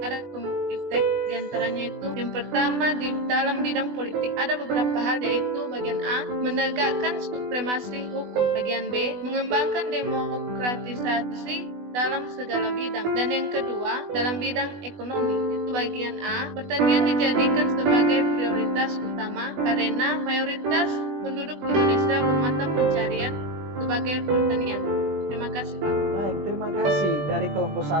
ada iptek, diantaranya itu yang pertama di dalam bidang politik ada beberapa hal, yaitu bagian A, menegakkan supremasi hukum, bagian B, mengembangkan demokratisasi dalam segala bidang, dan yang kedua dalam bidang ekonomi, itu bagian A, pertanian dijadikan sebagai prioritas utama karena mayoritas penduduk Indonesia bermata pencarian sebagai pertanian. Terima kasih Pak. Baik, terima kasih dari kelompok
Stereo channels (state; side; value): late; left; 20 ms